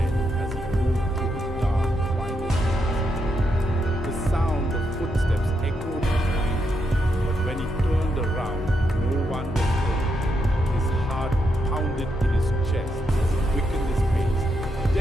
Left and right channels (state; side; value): normal; both; correlation 0.81